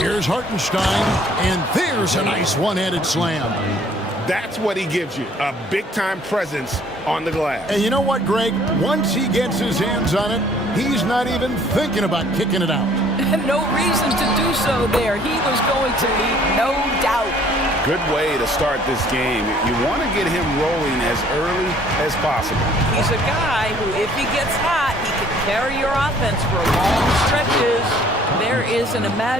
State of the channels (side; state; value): both; normal; correlation 0.58